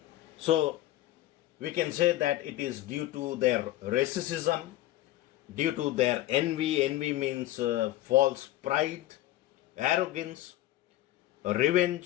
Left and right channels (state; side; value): quieter; right; 15.0 dB